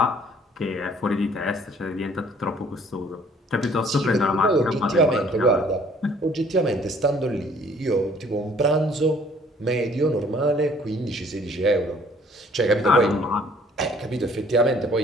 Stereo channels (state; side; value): normal; both; correlation 0.58